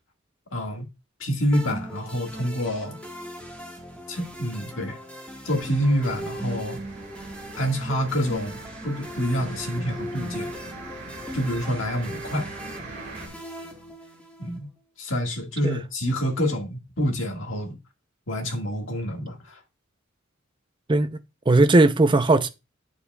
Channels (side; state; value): both; normal; correlation 0.68